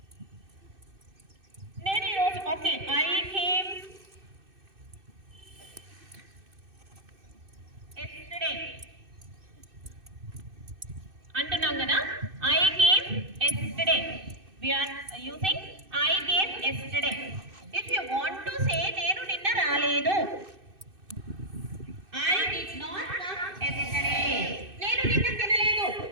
Okay, I came yesterday. Antunam kada, I came yesterday. We are using I came yesterday. If you want to say nenu ninna raaledu, I did not come yesterday. Nenu ninna tinaledu.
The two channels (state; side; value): late; left; 2.6 ms